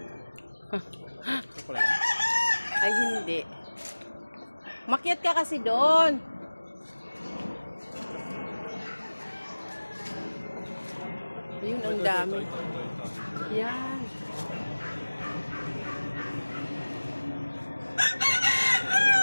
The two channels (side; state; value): both; inverted; correlation -1.00